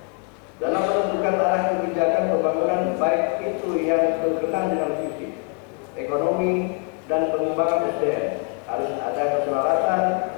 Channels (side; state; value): right; quieter; 35.3 dB